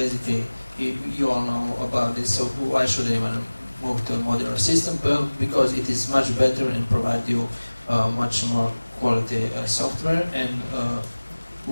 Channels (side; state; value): both; inverted; correlation -1.00